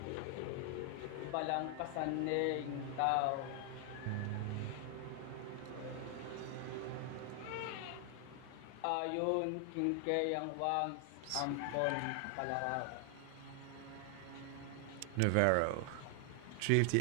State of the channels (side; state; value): both; different; correlation 0.00